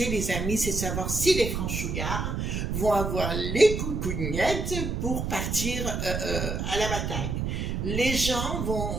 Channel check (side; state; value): right; noise; rumble, 2 dB below the sound